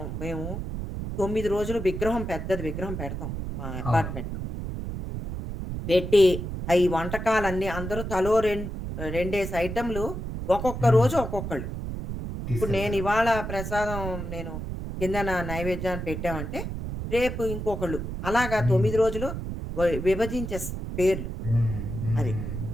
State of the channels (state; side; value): noise; right; rumble, 6 dB below the sound